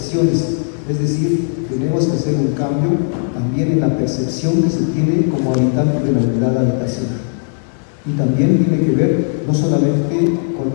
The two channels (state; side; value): silent; right; digital silence